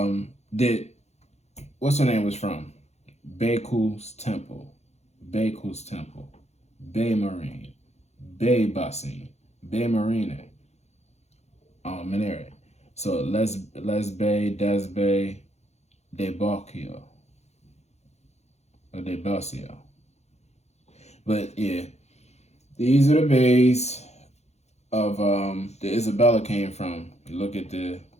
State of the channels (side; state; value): right; late; 0.32 ms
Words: what's her name was from? Baku's Temple, Bay Marine, Bay Bassin, Bay Marine, Minere. So Les Bay, Des Bay, De Bocchio, or De Bocchio. But yeah, these are the bays of the Isabella came from. You look at the